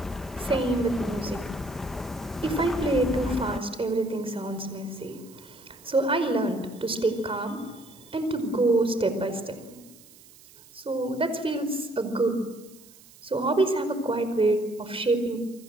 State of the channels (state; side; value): noise; right; hiss, 23 dB below the sound